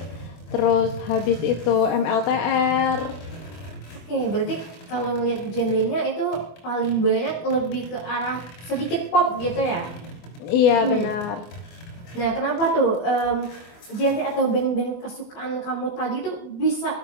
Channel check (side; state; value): right; late; 24 ms